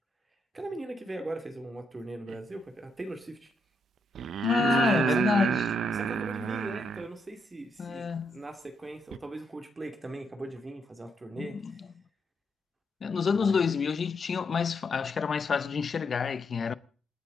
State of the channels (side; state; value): both; normal; correlation 0.78